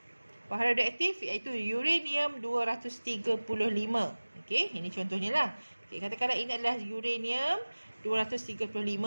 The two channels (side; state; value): both; inverted; correlation -1.00